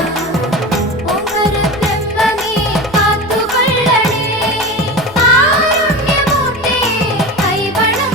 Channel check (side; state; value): both; normal; correlation 0.28